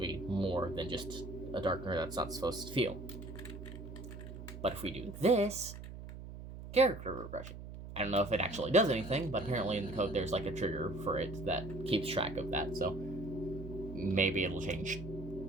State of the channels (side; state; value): right; noise; hum, 11 dB below the sound